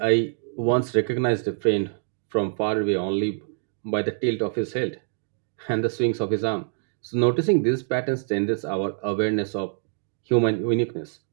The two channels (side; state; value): left; silent; digital silence